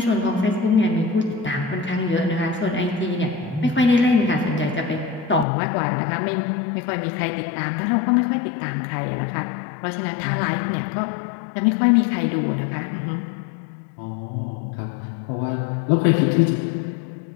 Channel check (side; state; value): right; drops out; at 5.5 s